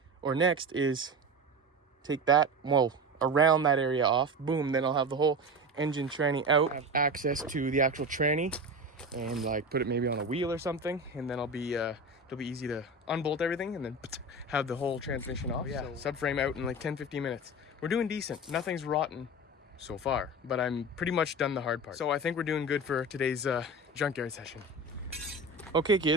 next is take that, well, around that area off. Boom, then I'll have the whole engine tranny out. I have access to the actual tranny and like put it maybe on a wheel or something, and then it'll be easy to unbolt everything and then have the whole transmission off. Yeah, so subframe out in like 10-15 minutes. We're doing decent. Nothing's rotten so far, but I'm pretty much done the hard part. So I think we're doing good for today's junkyard session. Okay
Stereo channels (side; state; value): both; normal; correlation 0.27